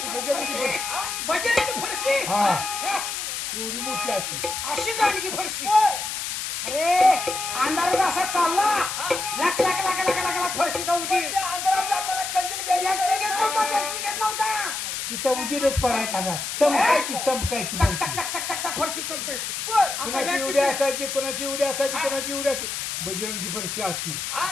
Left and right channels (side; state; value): left; noise; hiss, 4 dB below the sound